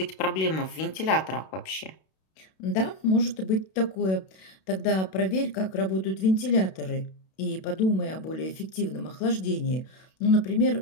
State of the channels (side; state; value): right; late; 32 ms